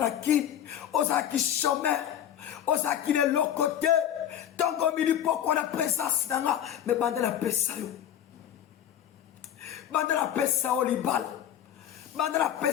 kin. Osaki chômeur. Osaki de l'autre côté. Tant qu'on me dit pourquoi la présence n'a mais bande la paix ça yo. Bande la paix ça au libal. Bande la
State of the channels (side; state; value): right; quieter; 10.3 dB